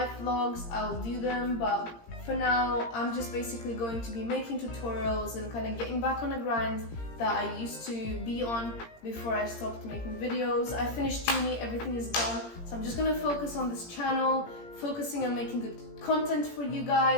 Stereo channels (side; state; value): right; late; 17 ms